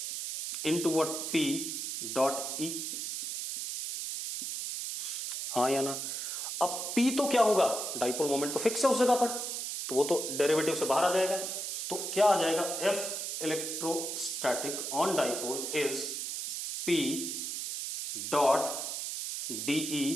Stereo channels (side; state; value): right; noise; hiss, 4 dB below the sound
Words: into what p dot E, हाँ या ना। अब p तो क्या होगा, डाइपोल मोमेंट तो फिक्स है उस जगह पर, तो वो तो डेरिवेटिव से बाहर आ जाएगा। तो क्या आ जाएगा, F electrostatic on dipole is p dot dE